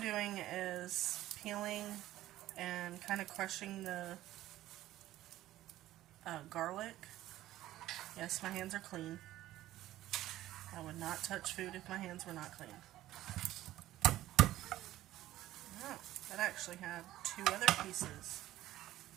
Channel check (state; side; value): quieter; left; 14.7 dB